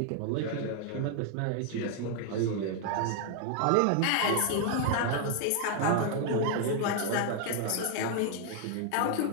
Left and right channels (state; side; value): different; both; correlation 0.00